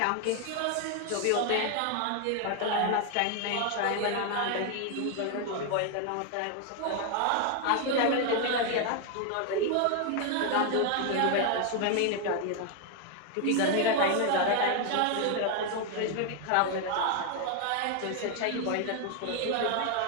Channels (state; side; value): different; both; correlation 0.00